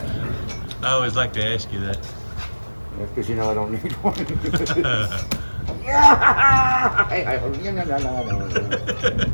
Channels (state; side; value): inverted; both; correlation -1.00